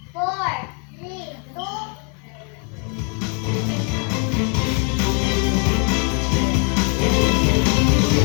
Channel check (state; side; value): quieter; right; 37.4 dB